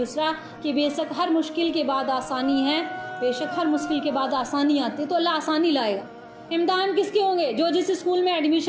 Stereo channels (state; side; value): identical; both; correlation 1.00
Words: کہ بے شک ہر مشکل کے بعد آسانی ہے، بے شک ہر مشکل کے بعد آسانی آتی ہے، تو اللہ آسانی لائے گا۔ امتحان کس کے ہوں گے؟ جو جس اسکول میں